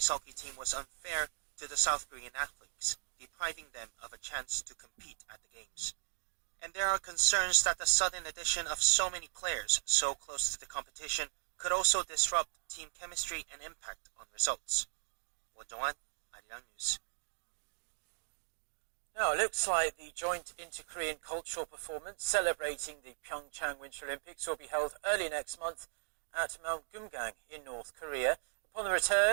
hockey team was unfair to the South Korean athletes, depriving them of a chance to compete at the Games. And there are concerns that the sudden addition of so many players so close to the competition could also disrupt team chemistry and impact on results. Won Jong-hwan, Arirang News. Now, it looks like the joint inter-Korean cultural performance celebrating the PyeongChang Winter Olympics will be held early next month at Mount Gumgang in North Korea. Upon the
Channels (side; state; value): left; silent; digital silence